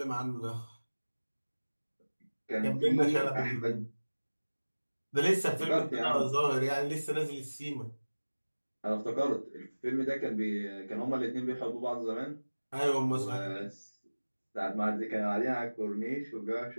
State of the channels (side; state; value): both; inverted; correlation -1.00